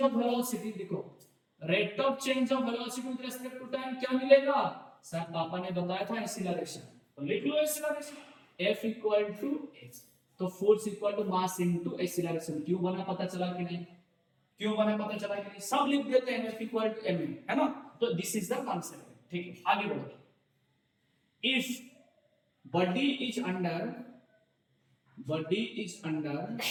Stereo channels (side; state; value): both; identical; correlation 1.00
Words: of velocity, देखो rate of change of velocity with respect to time क्या मिलेगा सर, पापा ने बताया था एक्सीलरेशन, तो लिख लो acceleration f equal to h, तो force equal to mass into acceleration, क्यों बना पता चला कि नहीं, क्यों बना पता चला कि नहीं, सब लिख देते हैं f इक्वल टू m, है ना। तो दिस इज द कॉन्सेप्ट, ठीक है। आगे बढ़ो, if body is under